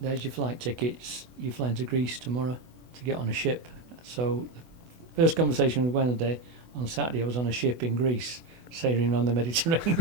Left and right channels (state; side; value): late; left; 24 ms